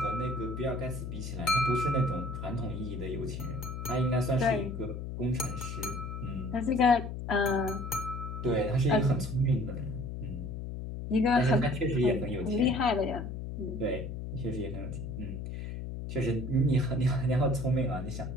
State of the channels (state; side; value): noise; left; hum, 6 dB below the sound